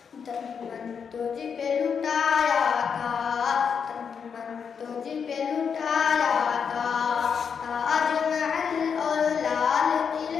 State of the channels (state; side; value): quieter; right; 6.6 dB